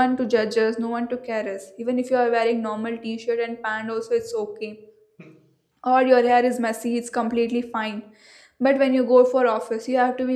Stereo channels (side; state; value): both; identical; correlation 1.00